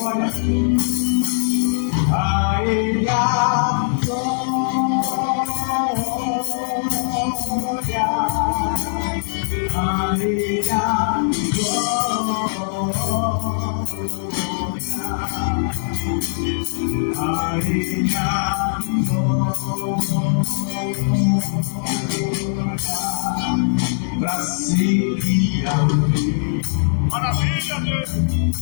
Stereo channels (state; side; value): silent; right; digital silence